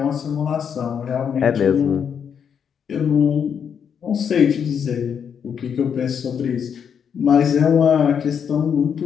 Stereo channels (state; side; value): quieter; right; 7.5 dB